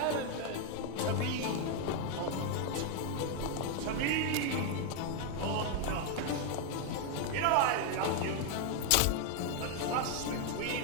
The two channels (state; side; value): different; both; correlation 0.01